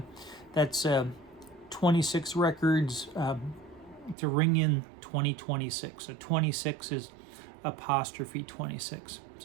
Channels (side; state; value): left; drops out; at 4.2 s